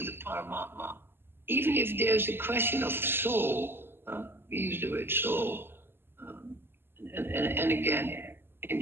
the Paramatma. Even if there's a question of soul, we use the word soul, um, and again, in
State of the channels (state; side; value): late; left; 0.11 ms